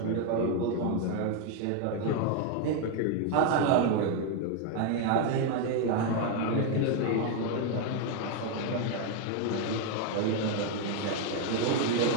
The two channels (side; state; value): both; different; correlation 0.02